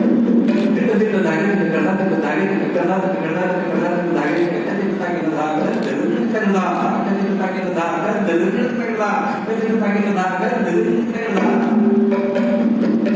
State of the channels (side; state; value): both; identical; correlation 1.00